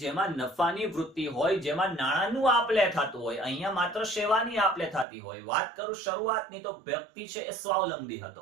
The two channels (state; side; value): drops out; left; at 5.1 s